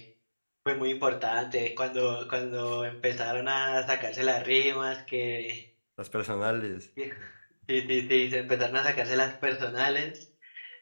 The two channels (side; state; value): both; inverted; correlation -1.00